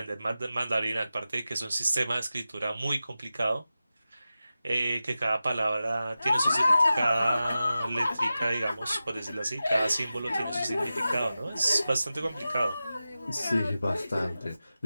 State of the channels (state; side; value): inverted; both; correlation -0.93